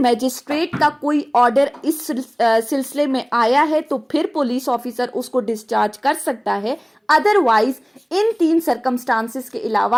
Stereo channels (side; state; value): both; identical; correlation 1.00